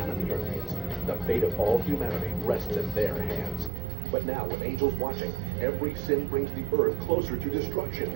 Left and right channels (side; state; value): left; drops out; at 3.7 s